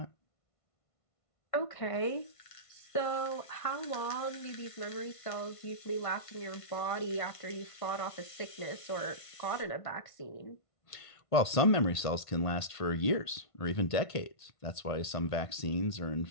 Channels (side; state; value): right; late; 1.5 ms